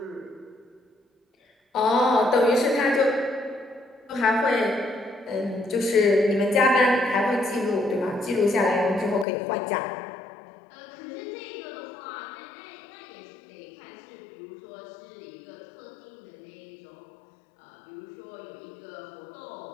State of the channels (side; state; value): right; drops out; at 9.2 s